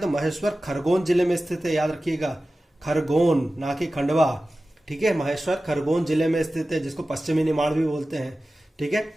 महेश्वर खरगोन जिले में स्थित है। याद रखिएगा, खरगोन, ना कि खंडवा। ठीक है, महेश्वर खरगोन जिले में स्थित है, जिसको पश्चिमी निमाड़ भी बोलते हैं। ठीक है।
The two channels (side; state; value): both; normal; correlation 0.95